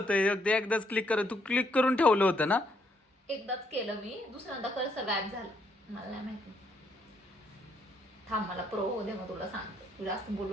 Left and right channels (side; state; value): both; normal; correlation 0.72